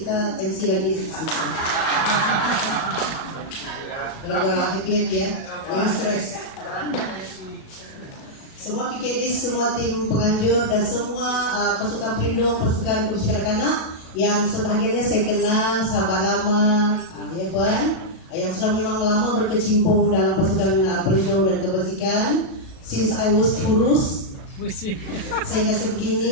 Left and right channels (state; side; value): late; right; 37 ms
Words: MC lagi sedikit. Gara-gara happy ya, jangan stres. Semua PKD, semua tim penganjur dan semua pasukan pelindung, pasukan kebajikan kanak yang sebahagiannya saya kenal sahabat lama, ya Puan, yang sudah memang lama berkecimpung dalam pasukan pelindung dan kebajikan. Since I was kurus, sehingga